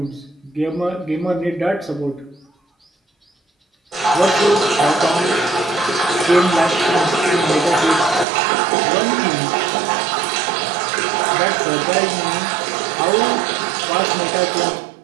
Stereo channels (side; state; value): left; drops out; at 8.2 s